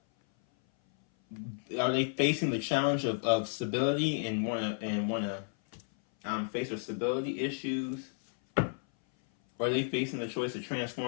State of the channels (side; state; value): right; silent; 56 dB below the other